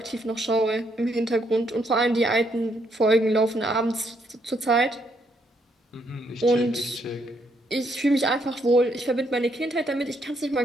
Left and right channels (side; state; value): both; normal; correlation 0.74